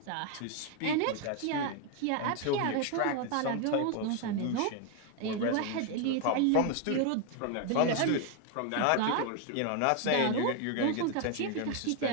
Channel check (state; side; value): different; both; correlation 0.01